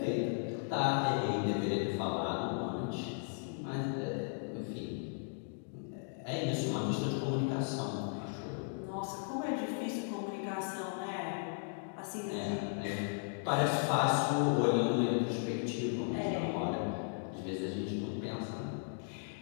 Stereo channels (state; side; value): silent; right; digital silence